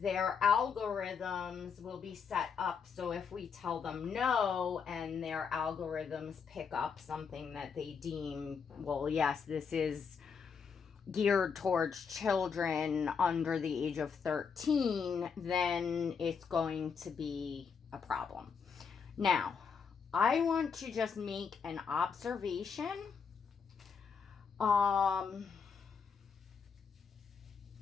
algorithms will be set up so if we tell them no, and their algorithms pick up something that they deem, well, yes, this is geared towards children under the age of 13, then it's going to be a problem. Now, I want to just make an observation.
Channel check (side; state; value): right; quieter; 6.1 dB